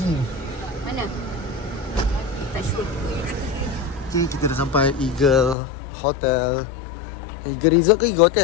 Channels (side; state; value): right; drops out; at 5.6 s